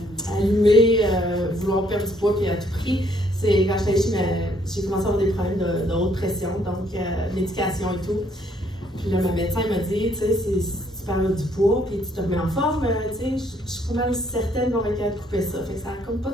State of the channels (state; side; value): normal; both; correlation 0.67